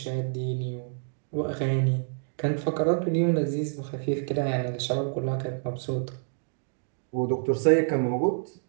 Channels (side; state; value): left; silent; digital silence